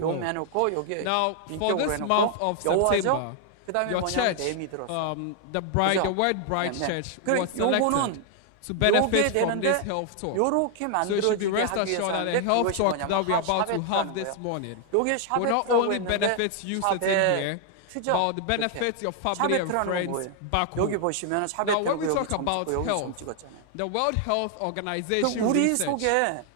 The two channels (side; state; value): both; different; correlation 0.00